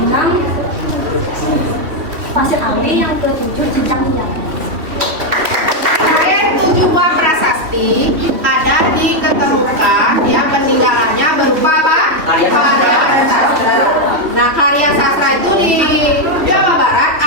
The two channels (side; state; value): left; late; 3.4 ms